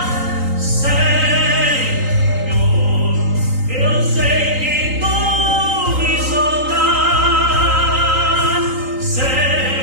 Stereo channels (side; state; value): left; late; 3.8 ms